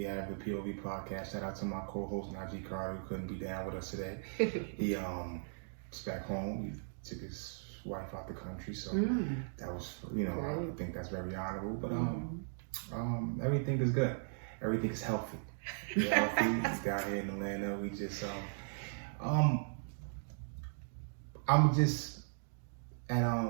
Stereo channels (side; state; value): left; silent; digital silence